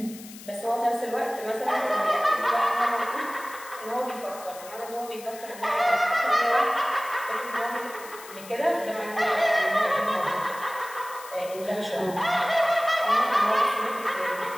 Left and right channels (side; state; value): left; noise; hiss, 16 dB below the sound